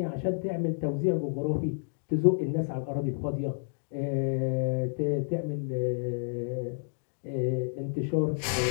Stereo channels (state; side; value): silent; right; digital silence